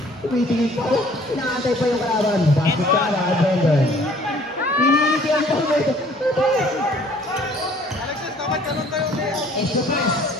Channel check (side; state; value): both; normal; correlation 0.56